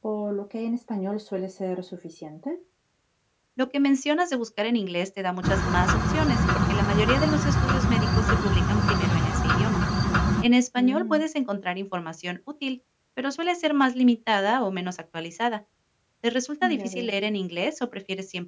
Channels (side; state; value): both; identical; correlation 1.00